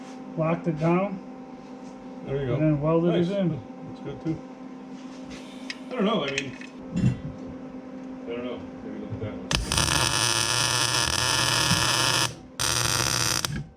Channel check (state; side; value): identical; both; correlation 1.00